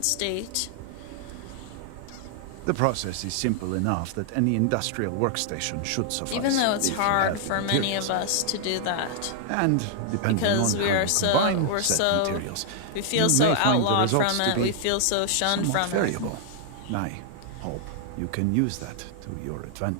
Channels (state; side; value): different; both; correlation -0.01